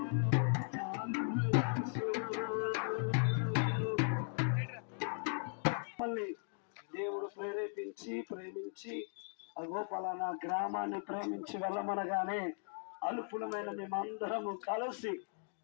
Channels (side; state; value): right; silent; 52 dB below the other